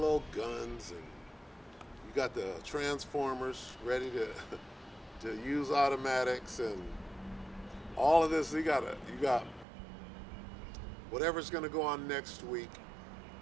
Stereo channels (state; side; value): drops out; left; at 9.7 s